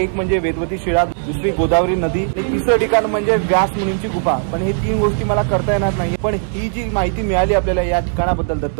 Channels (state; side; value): silent; left; 68 dB below the other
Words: म्हणजे वेदवती शिळा, दुसरी गोदावरी नदी आणि तिसरं ठिकाण म्हणजे व्यास मुनींची गुफा. पण हे 3 गोष्टी मला करता येणार नाही. पण ही जी माहिती मिळाली आपल्याला या ठिकाणाबद्दल